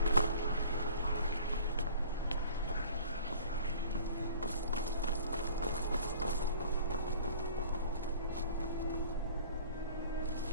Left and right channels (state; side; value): inverted; both; correlation -0.45